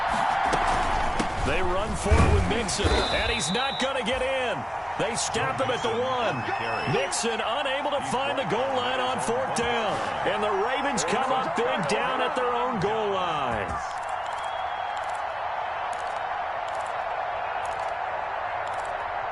They run for it with Mixon, and he's not going to get in. They stop him at the 1. Mixon unable to find the goal line on 4th down. And the Ravens come up big down at their own goal line.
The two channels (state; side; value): identical; both; correlation 1.00